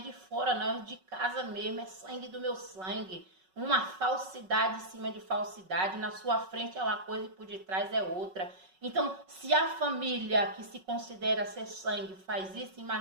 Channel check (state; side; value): late; left; 5.4 ms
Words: fora, não, é de casa mesmo, é sangue do meu sangue. Uma falsidade em cima de falsidade, na sua frente é uma coisa e por detrás é outra. Então, se a família que se considera ser sangue faz isso,